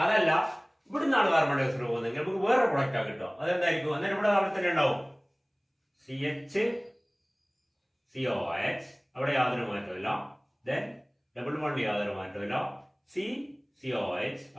അതല്ല ഇവിടെ നിന്നാണ് കാർബൺ ഡൈ ഓക്സൈഡ് പോകുന്നത്, നമുക്ക് വേറെ പ്രൊഡക്റ്റാ കിട്ടുക. അതെന്തായിരിക്കും? അന്നേരം ഇവിടെ അവിടെ തന്നെ ഉണ്ടാവും CH അവിടെ യാതൊരു മാറ്റമില്ല. ദെൻ ഡബിൾ ബോണ്ട് യാതൊരു മാറ്റമില്ല. COH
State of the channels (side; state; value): both; identical; correlation 1.00